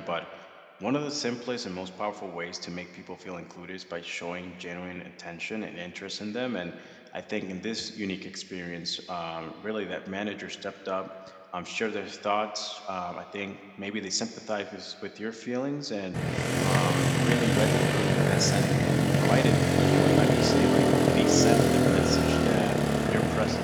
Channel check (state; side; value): identical; both; correlation 1.00